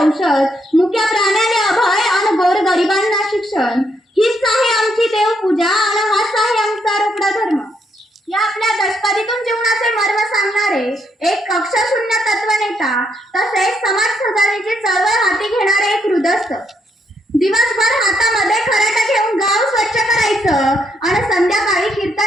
मुक्या प्राण्याले अभय आणि गोर गरिबांना शिक्षण. हीच आहे आमची देवपूजा आणि हाच आहे आमचा रोकडा धर्म. या आपल्या दशपदीतून जीवनाचे मर्म सांगणारे एक कक्षाशून्य तत्वनेता, तसेच समाज सुधारणेची चळवळ हाती घेणारे एक हृदयस्थ. दिवसभर हातामध्ये खराटा घेऊन गाव स्वच्छ करायचं आणि संध्याकाळी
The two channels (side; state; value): both; normal; correlation 0.75